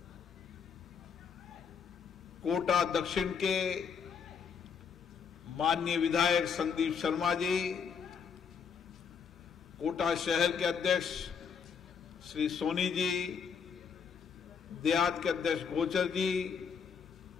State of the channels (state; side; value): quieter; right; 6.5 dB